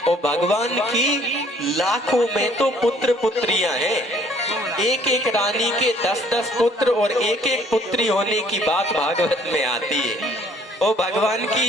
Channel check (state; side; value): normal; both; correlation 0.59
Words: और भगवान की लाखों में तो पुत्र पुत्रियां हैं। एक एक रानी के 10-10 पुत्र और एक एक पुत्री होने की बात भागवत में आती है। और भगवान